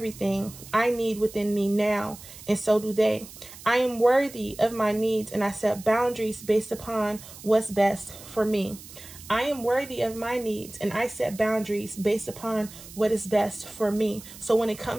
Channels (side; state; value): right; noise; hiss, 17 dB below the sound